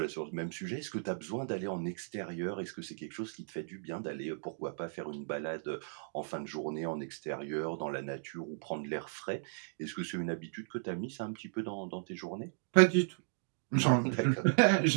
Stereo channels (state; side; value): silent; left; digital silence